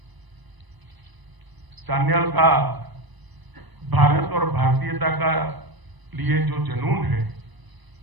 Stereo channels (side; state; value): left; late; 1.0 ms